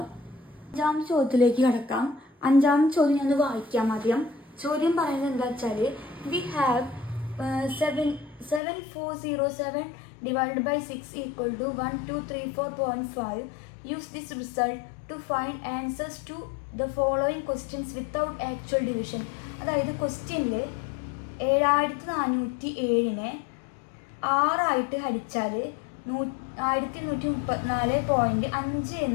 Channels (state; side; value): drops out; right; at 8.6 s